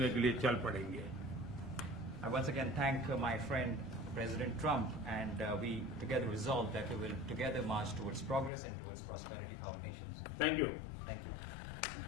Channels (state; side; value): drops out; right; at 8.5 s